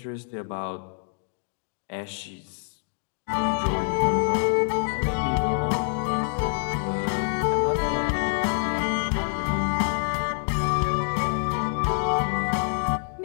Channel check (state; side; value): silent; right; digital silence